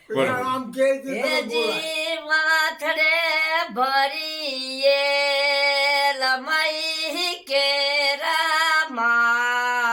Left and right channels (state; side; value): identical; both; correlation 1.00